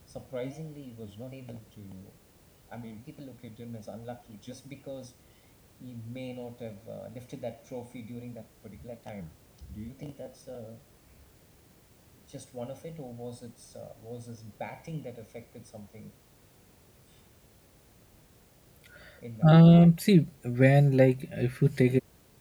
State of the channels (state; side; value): identical; both; correlation 1.00